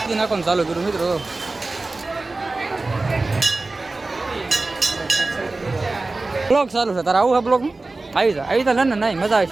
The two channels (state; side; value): quieter; left; 3.3 dB